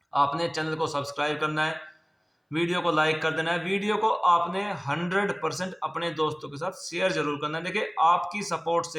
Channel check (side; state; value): both; identical; correlation 1.00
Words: आपने चैनल को सब्सक्राइब करना है, वीडियो को लाइक कर देना है, वीडियो को आपने 100% अपने दोस्तों के साथ शेयर जरूर करना है। देखिए, आपकी सपोर्ट